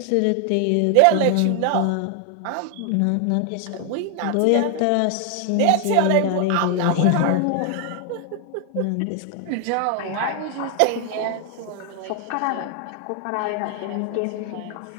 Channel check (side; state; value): both; different; correlation 0.00